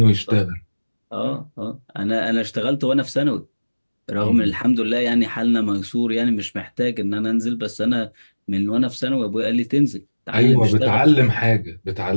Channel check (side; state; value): both; inverted; correlation -1.00